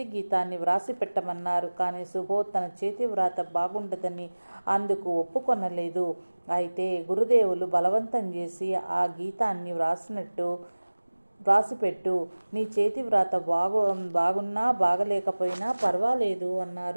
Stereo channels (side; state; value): both; inverted; correlation -1.00